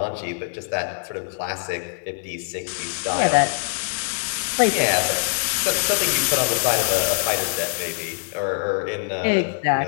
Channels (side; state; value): right; silent; 63 dB below the other